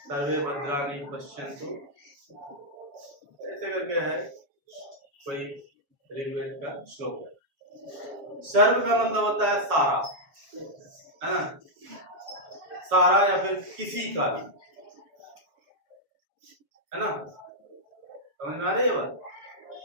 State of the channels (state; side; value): late; left; 7.1 ms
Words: सर्वे भद्राणि पश्यन्तु, ऐसे करके है कोई ऋग्वेद का श्लोक है। सर्व का मतलब होता है सारा, है ना? सारा या फिर किसी का भी, है ना? समझ में आ रही है बात?